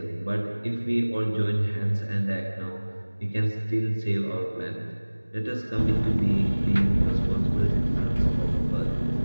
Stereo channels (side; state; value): both; inverted; correlation -1.00